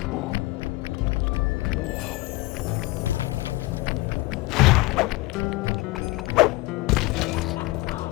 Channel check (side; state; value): right; quieter; 20.9 dB